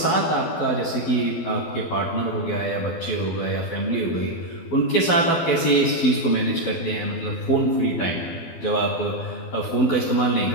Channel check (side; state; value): right; late; 12 ms